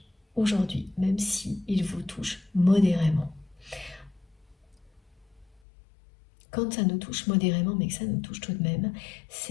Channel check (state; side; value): drops out; right; at 5.6 s